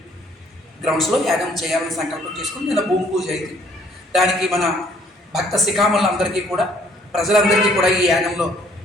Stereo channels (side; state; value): both; normal; correlation 0.62